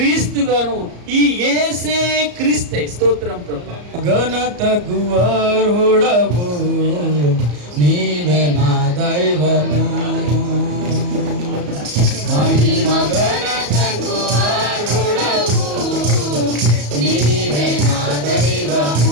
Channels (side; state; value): left; late; 34 ms